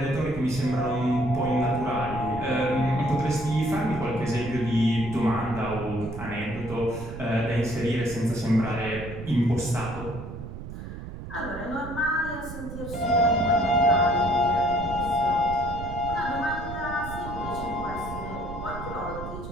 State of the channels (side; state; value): right; noise; rumble, 10 dB below the sound